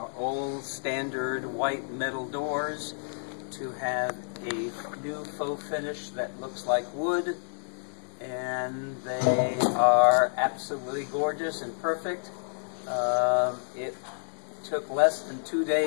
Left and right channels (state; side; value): silent; right; 58 dB below the other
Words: old standard white metal doors to have a new faux finish that looks like wood, and they are absolutely gorgeous and perfect. It took less than 2